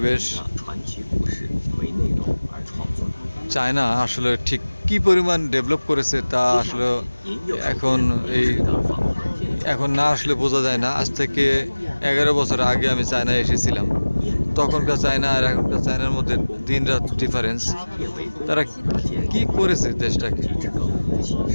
চায়না আসলে ঠিক কি পরিমাণ ডেভেলপ করেছে তা আসলে এখন না আসলে বোঝা যায় না। আজ থেকে 11 বছর আগে আমি চায়নায় এসেছিলাম। তখনকার চায়না আর এখনকার চায়নার মধ্যে দিন রাত ডিফারেন্স। তারা কি করেছে দেশটাকে,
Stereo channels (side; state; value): both; inverted; correlation -1.00